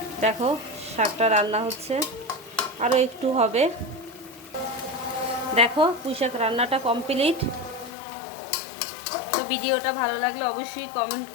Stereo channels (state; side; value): drops out; right; at 7.9 s